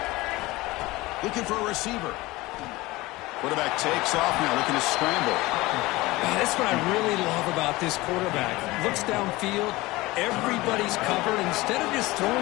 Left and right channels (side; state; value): right; quieter; 20.2 dB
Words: Looking for a receiver. Quarterback takes off now, looking to scramble. That's what I really love about this quarterback. Looks downfield, everybody's covered. Instead of just